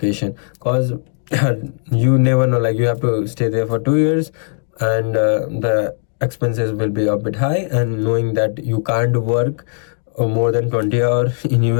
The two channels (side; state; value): right; silent; 65 dB below the other